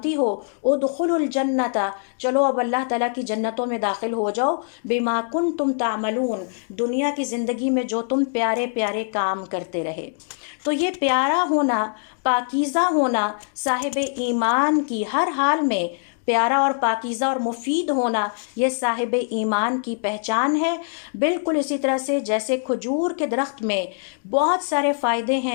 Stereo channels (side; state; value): right; silent; digital silence